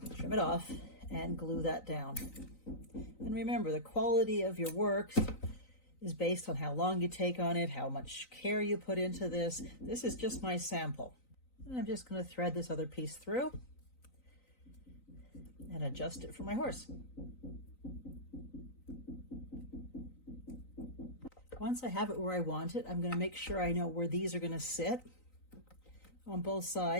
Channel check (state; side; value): late; right; 3.9 ms